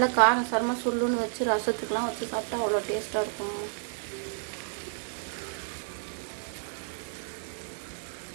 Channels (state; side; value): silent; left; digital silence